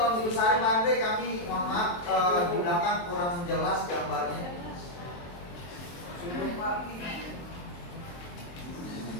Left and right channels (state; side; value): late; right; 23 ms